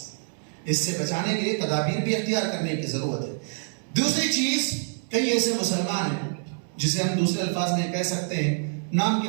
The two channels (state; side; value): silent; left; 61 dB below the other